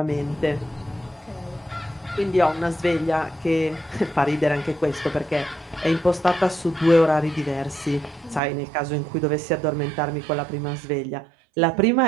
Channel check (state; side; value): drops out; left; at 8.4 s